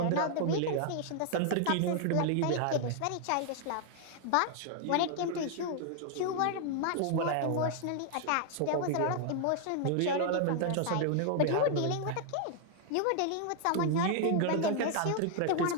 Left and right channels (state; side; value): different; both; correlation 0.00